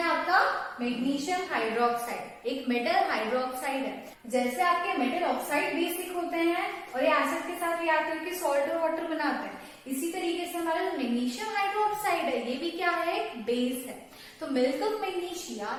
आपका? मैग्नीशियम हाइड्रोक्साइड, एक मेटल हाइड्रोक्साइड है। जैसे आपके मेटल ऑक्साइड बेसिक होते हैं और ये एसिड के साथ रिएक्ट करके सॉल्ट और वाटर बनाते हैं, इसी तरीके से हमारा जो मैग्नीशियम हाइड्रोक्साइड है ये भी क्या है? एक बेस है। तो मिल्क ऑफ मैग्नीशिया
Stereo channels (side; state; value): both; identical; correlation 1.00